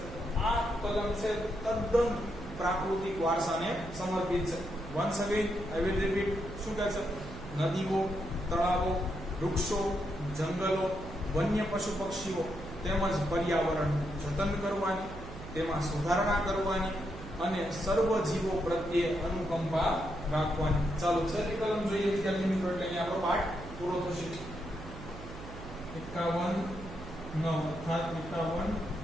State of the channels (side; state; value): right; noise; hum, 13 dB below the sound